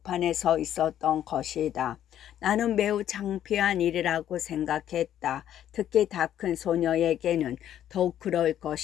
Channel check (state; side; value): quieter; right; 11.0 dB